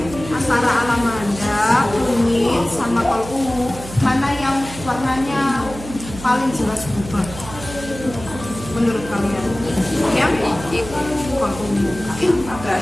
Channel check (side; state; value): right; noise; hum, 13 dB below the sound